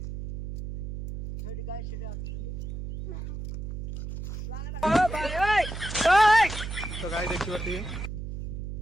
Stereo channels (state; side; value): noise; right; hum, 6 dB below the sound